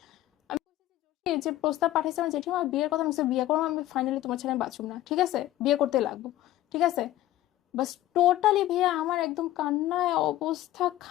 আমি এই যে প্রস্তাব পাঠাইছে আমার জেঠিমা, বিয়ের কথা, আমি বলছি, বিয়ে করবো আমি, ফাইনালি তোমার ছেলে আমি বাঁচুম না, ঠিক আছে, বিয়ে করতে লাগবো, ঠিক আছে। বাস টোটালি ভাইয়া আমার একদম কান্নায় অবস্থা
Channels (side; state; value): right; quieter; 14.6 dB